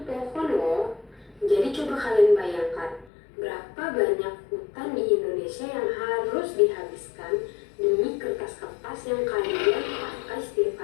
pohon loh. Jadi coba kalian bayangkan, berapa banyak hutan di Indonesia yang harus dihabiskan demi kertas-kertas yang kalian pakai setiap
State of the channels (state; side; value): drops out; right; at 3.1 s